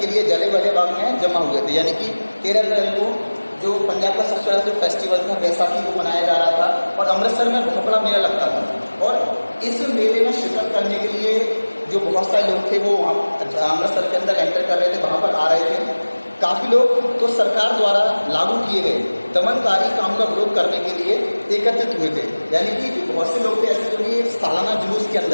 लिए जलियांवाला बाग में जमा हुए थे। यानी कि 13 अप्रैल को जो पंजाब का सबसे बड़ा जो फेस्टिवल था बैसाखी को मनाया जा रहा था और अमृतसर में बहुत बड़ा मेला लगता था। और इस मेले में शिरकत करने के लिए जो बहुत सारे लोग थे वो अमृतसर के अंदर एंटर कर रहे थे, वहाँ पर आ रहे थे। काफ़ी लोग तो सरकार द्वारा लागू किए गए दमनकारी काम का विरोध करने के लिए एकत्रित हुए थे। यानी कि बहुत से लोग थे ऐसे जो कि सालाना जुलूस के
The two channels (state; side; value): inverted; both; correlation -1.00